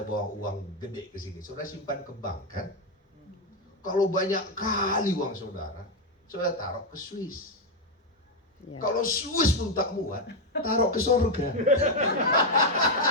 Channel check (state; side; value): normal; both; correlation 0.04